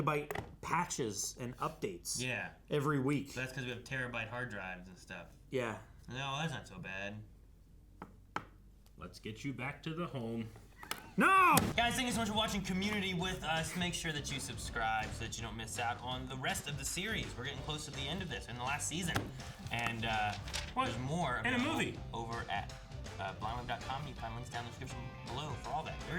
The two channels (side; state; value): both; identical; correlation 1.00